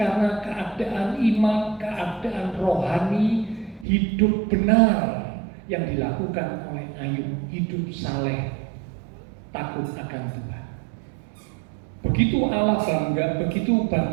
keadaan iman, keadaan rohani, hidup benar yang dilakukan oleh Ayub, hidup saleh, takut akan Tuhan. Begitu Allah bangga, begitu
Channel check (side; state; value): left; drops out; at 3.9 s